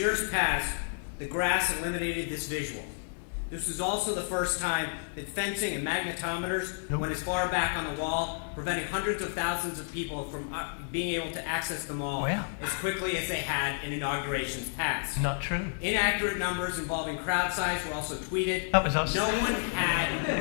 past, the grass eliminated this visual. This was also the first time that fencing and magnetometers went as far back on the wall, preventing hundreds of thousands of people from being able to access the mall as quickly as they had in inaugurations past. Not true. Inaccurate numbers involving crowd size were also tweeted. That was us. No one had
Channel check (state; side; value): silent; right; digital silence